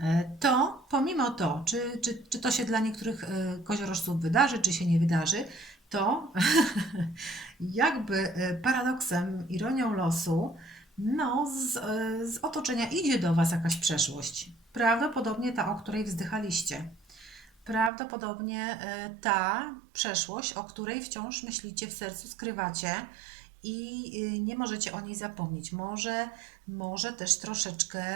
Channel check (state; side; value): drops out; left; at 17.9 s